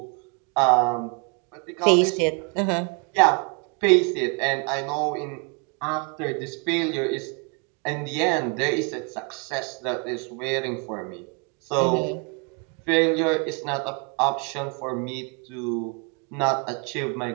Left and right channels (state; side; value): quieter; left; 34.6 dB